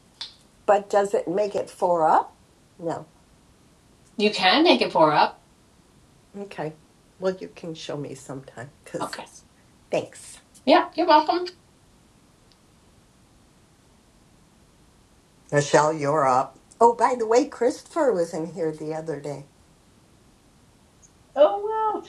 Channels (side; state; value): both; identical; correlation 1.00